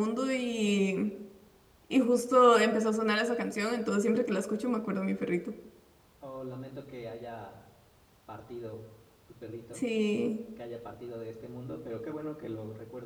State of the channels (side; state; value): both; identical; correlation 1.00